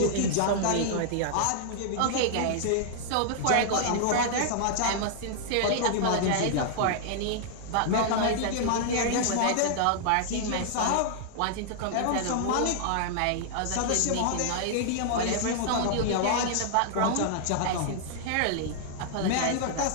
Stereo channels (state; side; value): different; both; correlation -0.01